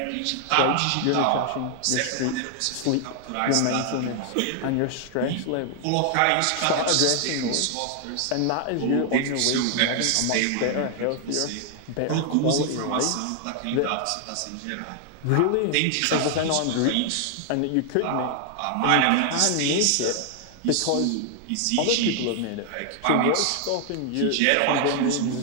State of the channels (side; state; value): both; different; correlation 0.00